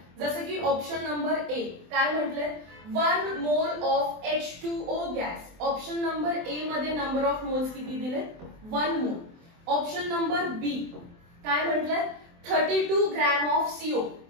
जसं की ऑप्शन नंबर ए काय म्हटले? 1 mole of H2O gas. Option number ए मध्ये नंबर ऑफ मोल्स किती दिले? 1 मोल. ऑप्शन नंबर बी काय म्हटले? 32 gram of CO.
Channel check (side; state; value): left; late; 23 ms